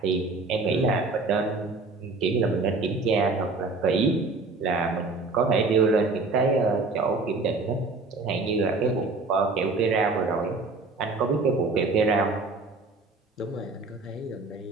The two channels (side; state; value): left; quieter; 3.7 dB